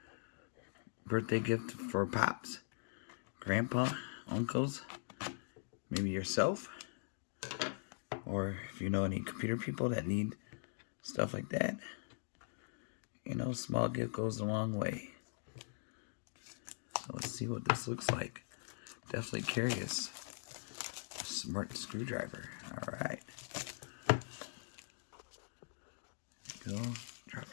birthday gift for pops, grandpa, uncles, maybe yourself. Or if you know any computer people that need stuff like that. You know, small gift goes a long way. So let's see what this looks like. Definitely curious. Smart screwdriver. Alright. Go. Drop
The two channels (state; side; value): silent; right; digital silence